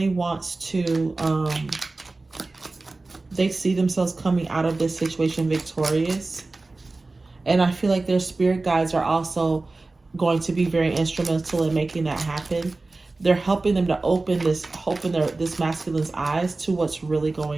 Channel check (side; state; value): left; quieter; 3.3 dB